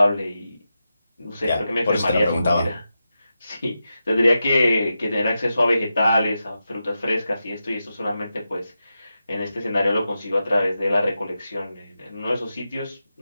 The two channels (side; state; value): both; inverted; correlation -0.90